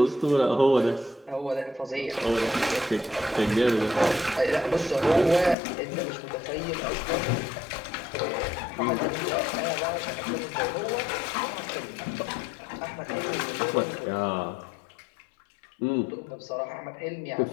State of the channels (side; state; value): right; drops out; at 5.6 s